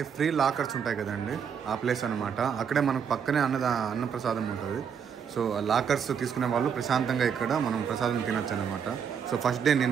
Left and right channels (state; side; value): quieter; left; 7.3 dB